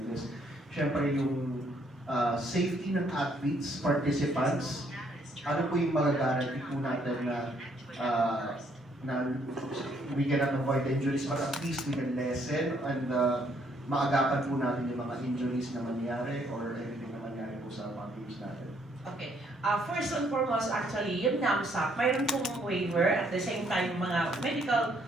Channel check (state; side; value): normal; both; correlation 0.68